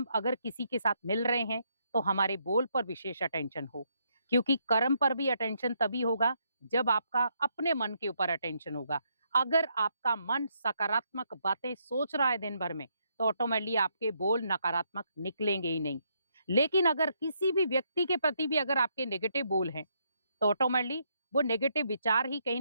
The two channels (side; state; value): both; inverted; correlation -0.75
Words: अगर किसी के साथ मिल रहे हैं तो हमारे बोल पर विशेष अटेंशन हो, क्योंकि कर्म पर भी अटेंशन तभी होगा जब आपका अपने मन के ऊपर अटेंशन होगा। अगर आपका मन सकारात्मक बातें सोच रहा है दिन भर में तो ऑटोमेटिकली आपके बोल नकारात्मक निकलेंगे ही नहीं। लेकिन अगर किसी भी व्यक्ति के प्रति भी अगर आपके नेगेटिव बोल हैं तो ऑटोमेटिकली वो नेगेटिव विचार ही कहीं